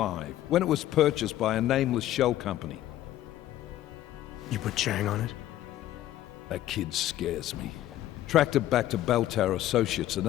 when it was purchased by a nameless shell company. You put Chang on it? That kid scares me. Tracked it back to Bell Tower Associates in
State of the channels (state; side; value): quieter; right; 13.6 dB